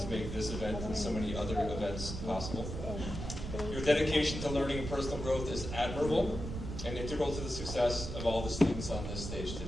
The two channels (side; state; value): right; noise; rumble, 6 dB below the sound